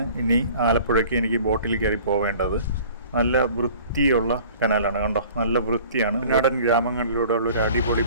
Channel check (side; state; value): both; inverted; correlation -0.48